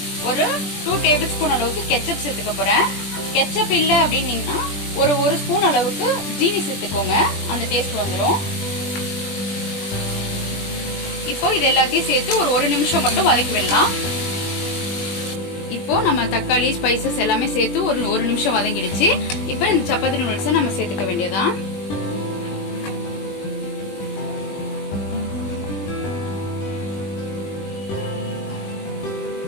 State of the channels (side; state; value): right; late; 20 ms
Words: ஒரு 2 டேபிள் ஸ்பூன் அளவுக்கு கெச்சப் சேர்த்துக்க போறேன். கெச்சப் இல்லை அப்படின்னீங்கன்னா ஒரு ஸ்பூன் அளவுக்கு ஜீனி சேர்த்துக்கோங்க, அந்த டேஸ்ட் வந்துடும். இப்போ இது எல்லாத்தையும் சேர்த்து ஒரு நிமிஷம் மட்டும் வதக்கி விடலாம். இப்போ நம்ம தக்காளி ஸ்பைசஸ் எல்லாமே சேர்த்து ஒரு நிமிஷம் வதங்கிடுச்சு. இப்போ இந்த சப்பாத்தி நூடுல்ஸை நம்ம சேர்த்துக்க வேண்டியதான்.